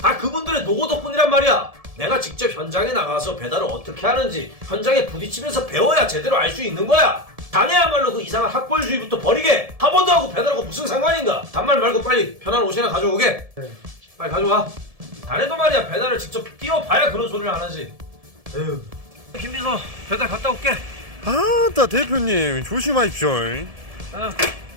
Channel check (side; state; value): left; late; 1.7 ms